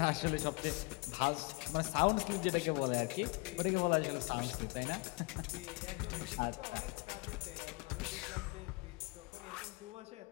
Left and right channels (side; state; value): right; quieter; 28.4 dB